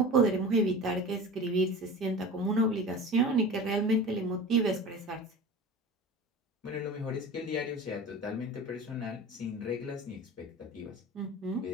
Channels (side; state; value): both; normal; correlation 0.35